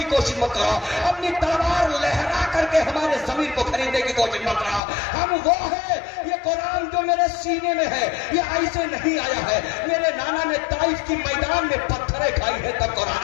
کوشش مت کرو، اپنی تلوار لہرا کر کے ہمارے ضمیر کو خریدنے کی کوشش مت کرو، ہم وہ ہے، یہ قرآن جو میرے سینے میں ہے یہ ایسے نہیں آیا ہے، میرے نانا نے طائف کی میدان میں پتھریں کھائی ہے تب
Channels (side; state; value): right; drops out; at 4.8 s